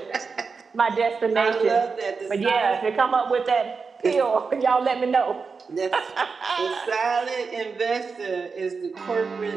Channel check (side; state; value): left; quieter; 4.9 dB